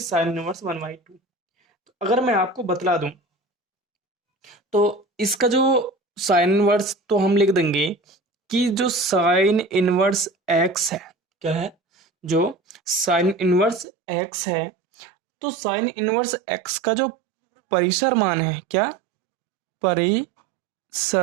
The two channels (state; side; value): drops out; left; at 13.9 s